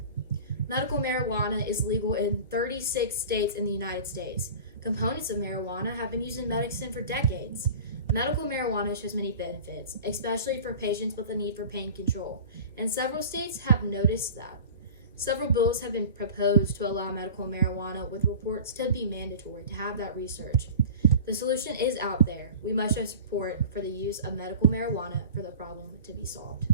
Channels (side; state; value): both; inverted; correlation -0.38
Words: Medical marijuana is legal in 36 states in the United States. Components of marijuana have been used in medicine for decades. Medical marijuana shows many benefits, especially for patients with a need for pain control, and several states have noticed that. Several bills have been proposed to allow medical marijuana, with reports to be mandatory to have that research. The solution is out there. We must show support for the use of medical marijuana for the problem to be solved.